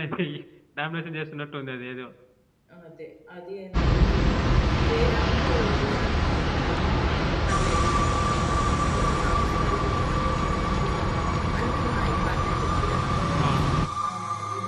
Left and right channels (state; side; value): identical; both; correlation 1.00